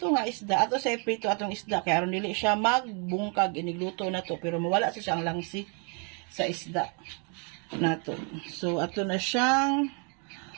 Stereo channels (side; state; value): left; quieter; 36.9 dB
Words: nga isda. Ato sa prito atong isda kaya aron dili siya magbungkag inigluto na to pero mawala sa siyang langsi sa isda nato. So ato na siyang